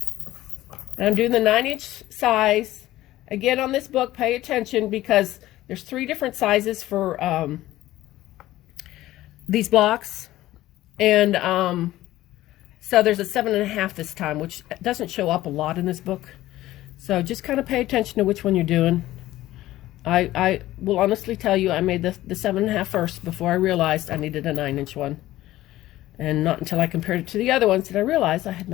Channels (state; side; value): quieter; right; 15.6 dB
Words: And I'm doing the 9-inch size. Again, on this book, pay attention because there's 3 different sizes for these blocks, and so there's a 7.5 this time, which doesn't show up a lot in this book, so just kind of pay attention to which one you're doing. I will honestly tell you I made the 7.5 first before I realized I needed a 9-inch one, and not until I compared it to the other ones did I realize I had